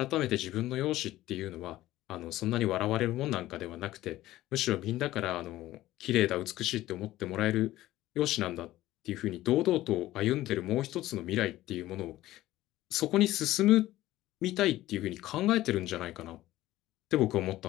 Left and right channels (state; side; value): quieter; right; 15.6 dB